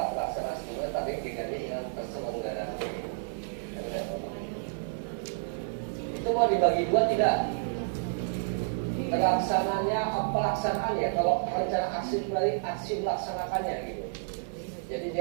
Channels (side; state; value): left; silent; 58 dB below the other